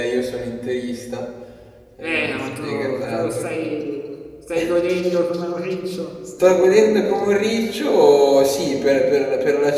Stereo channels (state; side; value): identical; both; correlation 1.00